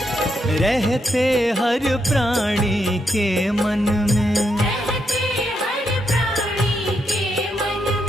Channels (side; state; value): both; normal; correlation 0.80